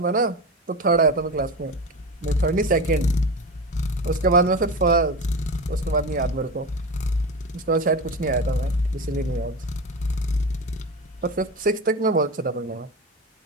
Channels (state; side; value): normal; both; correlation 0.25